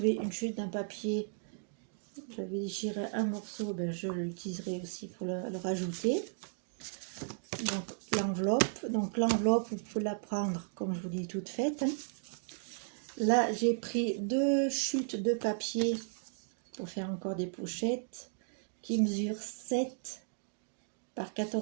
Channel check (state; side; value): silent; left; digital silence